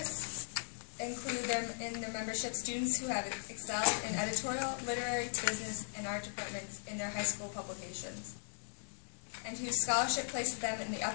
include in their membership students who have excelled in editorial, literary, business, and art departments in their high school publications, and whose scholarship places them in the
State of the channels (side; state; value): right; silent; 52 dB below the other